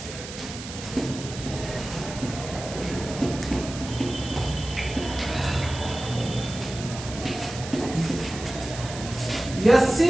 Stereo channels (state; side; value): noise; right; hiss, 11 dB below the sound